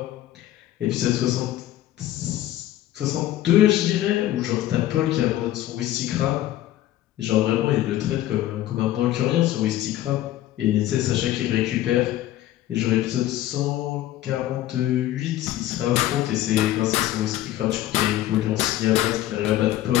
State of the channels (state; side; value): quieter; right; 14.0 dB